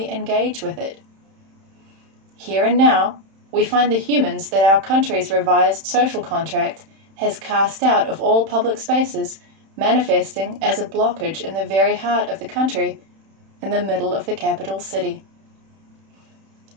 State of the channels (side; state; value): left; late; 31 ms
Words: engage with it. Here and now, we find the humans that our country's revised social contract has cast out of all public spaces, manifesting as a blockage in the very heart of the country, in the middle of the capital city.